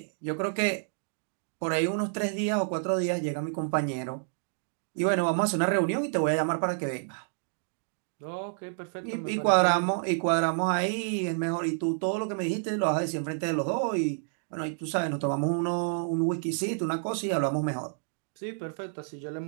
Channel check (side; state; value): left; silent; digital silence